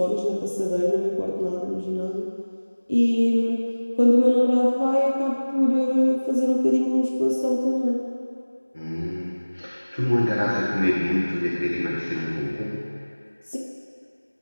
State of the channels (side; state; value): both; inverted; correlation -1.00